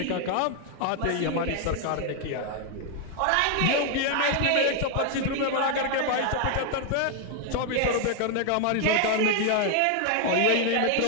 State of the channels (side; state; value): both; different; correlation 0.00